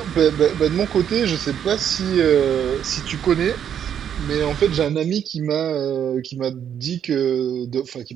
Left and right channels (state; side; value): quieter; left; 9.0 dB